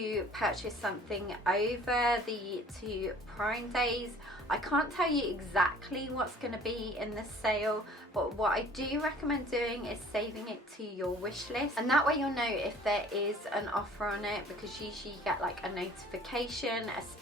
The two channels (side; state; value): both; normal; correlation 0.50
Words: purchase something over the 2 Prime days, I can't tell you exactly what's going to be in the sale, but what I do recommend doing is saving it to your wish list, and that way you'll know if there is an offer on it, because usually you get like a notification,